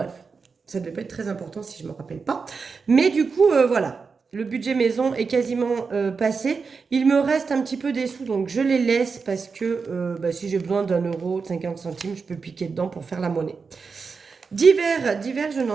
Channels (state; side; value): quieter; left; 5.0 dB